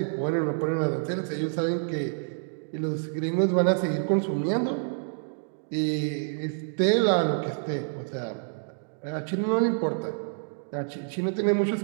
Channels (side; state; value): left; silent; digital silence